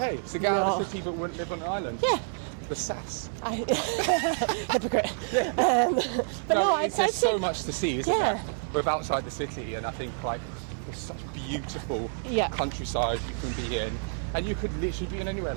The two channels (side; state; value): left; silent; 55 dB below the other